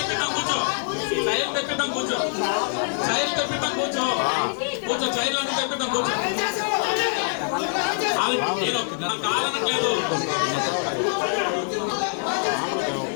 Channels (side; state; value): right; silent; digital silence